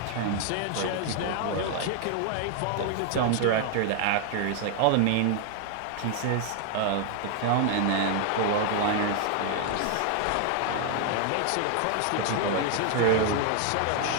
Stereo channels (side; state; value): both; different; correlation 0.00